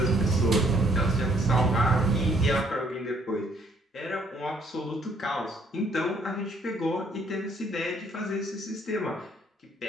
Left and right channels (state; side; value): normal; both; correlation 0.65